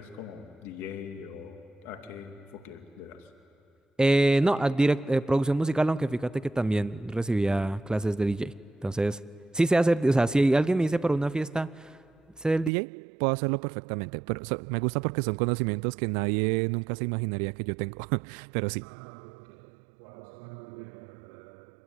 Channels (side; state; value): left; drops out; at 12.7 s